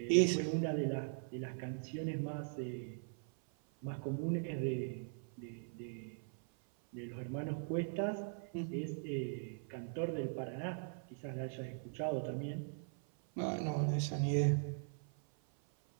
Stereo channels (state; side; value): silent; left; 51 dB below the other